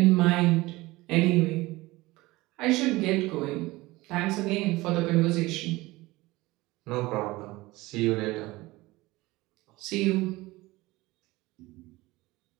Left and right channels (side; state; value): left; quieter; 20.2 dB